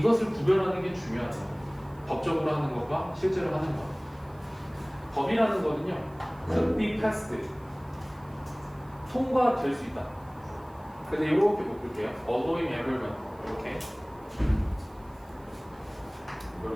구별하는 게 중요하다. 법적으로 하는 것과 실제로 하는 것 법이라는 거는요 could be passed 통과될 수 있다. 근데 이렇게 볼게요. allowing everyone 이렇게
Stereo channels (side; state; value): right; noise; hiss, 30 dB below the sound